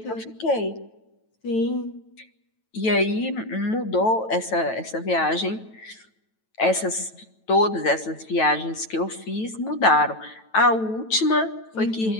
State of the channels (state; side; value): late; right; 9.1 ms